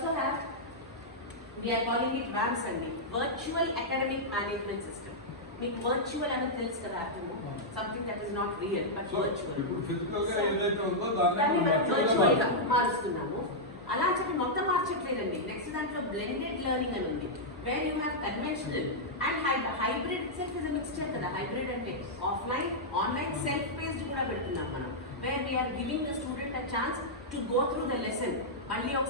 have, we are calling it VAMS andi, Virtual Academic Management System. మీకు వర్చువల్ అనేది తెలుసు కదా, అర్థము something that is not real but virtual. ఇప్పుడు ఫిజికల్ గా ఏదైతే ఉందో దాన్ని మనం వర్చువల్ గా మారుస్తున్నాము. అలా చెప్పి మొత్తం మార్చట్లేదండి. నెక్స్ట్ దాంట్లో బ్లెండెడ్ లెర్నింగ్ అని ఉంది, where you have conventional and hybrid. Self is mixture కదా. హైబ్రిడ్ అంటే ఆఫ్లైన్ ఆన్లైన్ సెల్ఫ్ బేస్డ్ కూడా పెడుతున్నాం మనం, where we're giving the student a chance to go through the lesson. మళ్ళీ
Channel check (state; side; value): normal; both; correlation -0.08